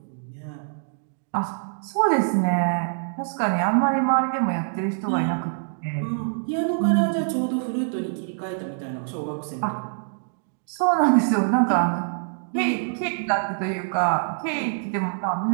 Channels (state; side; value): silent; left; digital silence